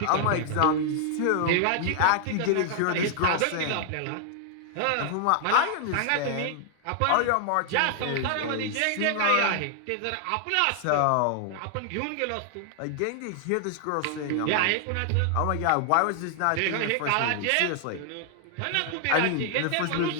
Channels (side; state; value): both; different; correlation 0.00